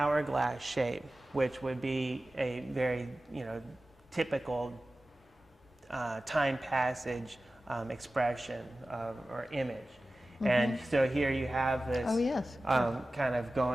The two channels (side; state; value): both; normal; correlation 0.96